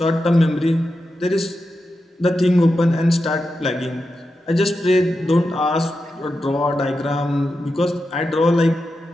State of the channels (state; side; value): normal; both; correlation 0.89